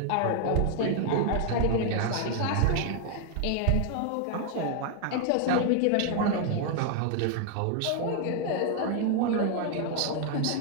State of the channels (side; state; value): both; different; correlation 0.00